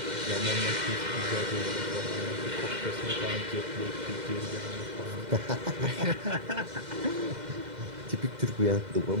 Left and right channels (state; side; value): late; left; 2.0 ms